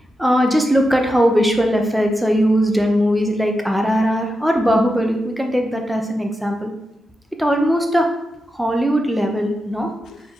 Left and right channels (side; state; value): both; normal; correlation 0.88